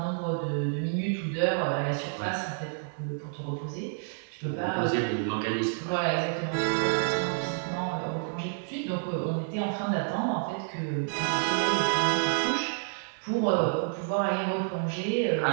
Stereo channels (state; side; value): silent; left; digital silence